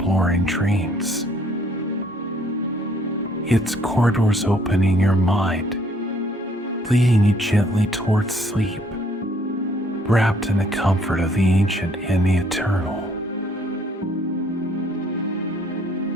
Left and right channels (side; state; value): both; normal; correlation 0.64